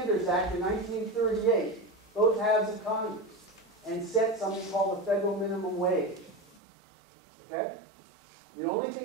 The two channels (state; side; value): drops out; left; at 6.6 s